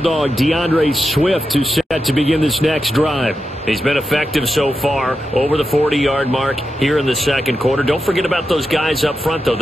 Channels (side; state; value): both; normal; correlation 0.89